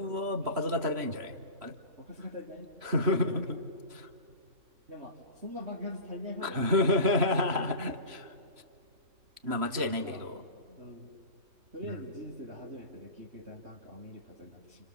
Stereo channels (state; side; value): late; left; 3.0 ms